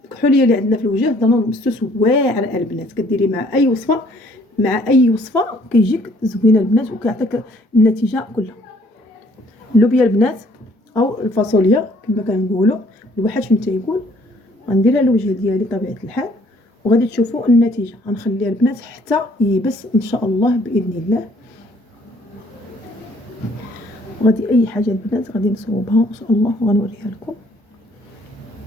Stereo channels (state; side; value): normal; both; correlation 0.61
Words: اللي عندنا في الوجه دانون مسوس واعر البنات، كديري مع اي وصفه، كيجيك زوينه البنات وكيعطيك النتيجه كلها. اللوبيا البنات او الفاصوليا كما كنقولوا، الواحد فين تيقول. غنديرها للوجه ديالي طبيعه الحال وغادي تشوفوا النتيجه. غنخليها البنات حتى يبس ان شاء الله باذن الله. وغادي اي حاجه البنات غادي نصوبها ان شاء الله وغنوريها لكم.